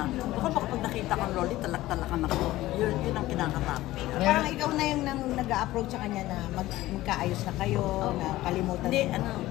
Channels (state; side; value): quieter; right; 16.6 dB